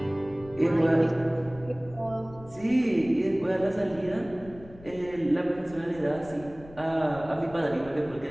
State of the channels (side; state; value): left; noise; rumble, 19 dB below the sound